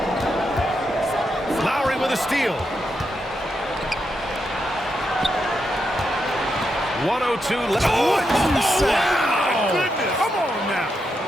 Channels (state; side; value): normal; both; correlation 0.84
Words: Lowry with a steal. 102 left. What did you say? My goodness. Come on now.